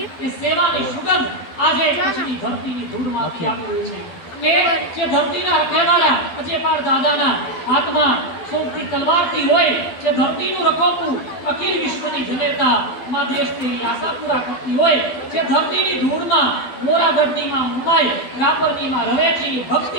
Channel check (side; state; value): right; late; 12 ms